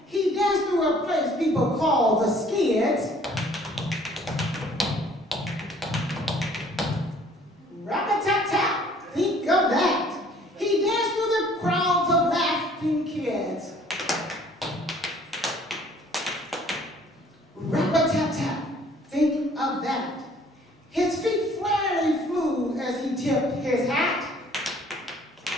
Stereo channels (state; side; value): normal; both; correlation 0.56